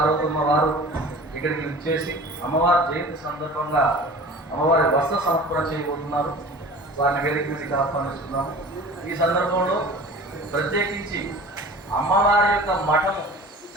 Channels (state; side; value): normal; both; correlation 0.41